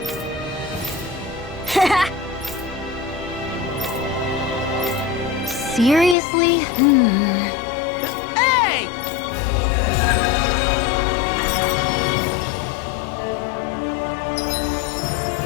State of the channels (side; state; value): right; drops out; at 6.2 s